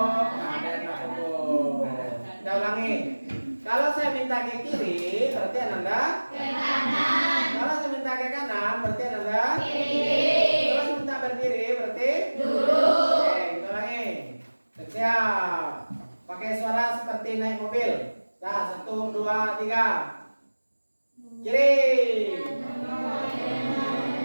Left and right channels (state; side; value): inverted; both; correlation -1.00